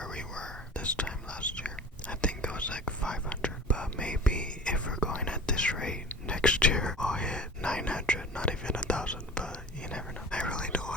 we were this time last year. I think it was like 500, but maybe if we're going at this rate, next year I'll hit 900, not even 1,000, but you never know. I really don't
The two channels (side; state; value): both; normal; correlation 0.38